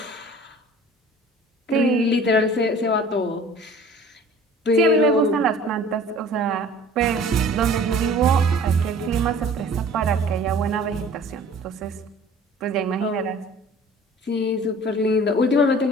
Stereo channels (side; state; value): both; normal; correlation 0.47